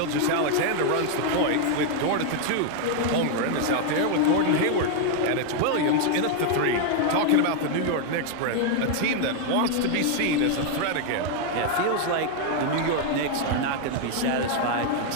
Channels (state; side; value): different; both; correlation 0.00